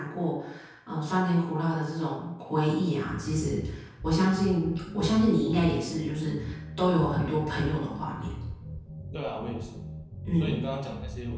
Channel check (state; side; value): identical; both; correlation 1.00